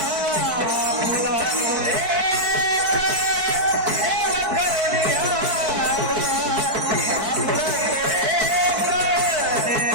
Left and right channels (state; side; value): late; left; 4.6 ms